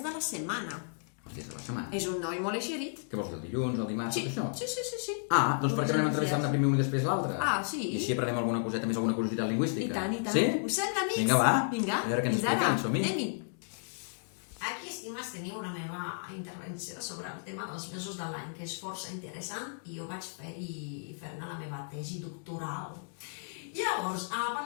de la setmana. Els dies de la setmana. És un noi molt eixerit. Què vols dir, el dilluns, el dimarts, tot això? Sí. Ah, doncs per què no anem entrevistant-ne primer un i després l'altre? Ah, sí? I així aprenem alguna coseta més, alguna curiositat lingüística. I tant. Sí? Us sembla, amics? Vinga, va. Vinga, A veure què ens expliquen, som-hi. Anem-hi. Aquí, estimes, teniu la meva intervenció sobre el tema dels mesos de l'any, que és força interessant, i jo vaig fer-ne la meva tesi doctoral. Llavors,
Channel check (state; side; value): silent; right; digital silence